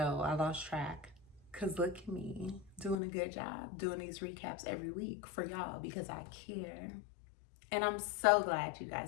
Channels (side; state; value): right; drops out; at 3.0 s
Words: I lost track. Cause look at me doing a good job doing these recaps every week for y'all because I care. And I'm so glad you